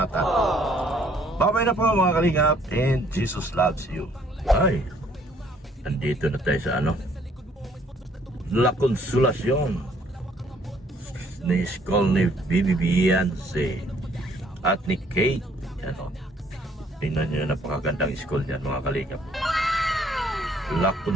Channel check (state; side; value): normal; both; correlation 0.63